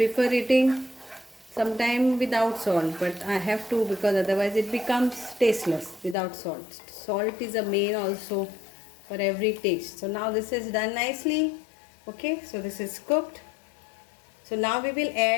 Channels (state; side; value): drops out; right; at 6.2 s